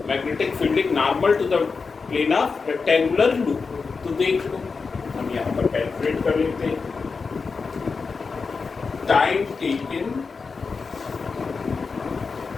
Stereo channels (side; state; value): right; quieter; 4.8 dB